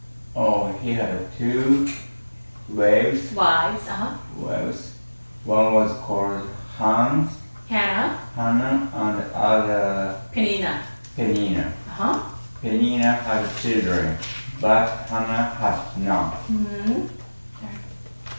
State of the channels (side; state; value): both; inverted; correlation -1.00